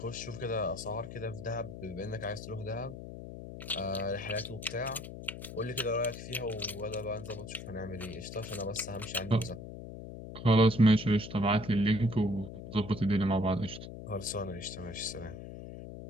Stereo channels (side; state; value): left; noise; hum, 10 dB below the sound